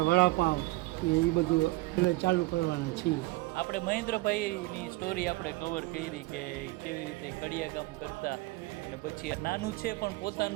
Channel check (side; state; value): left; quieter; 20.8 dB